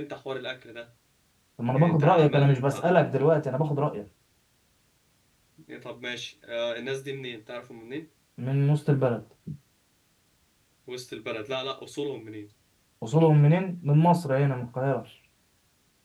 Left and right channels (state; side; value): identical; both; correlation 1.00